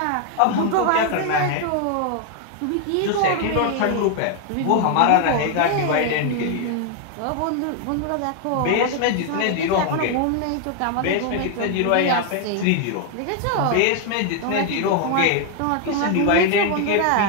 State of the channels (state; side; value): different; both; correlation 0.00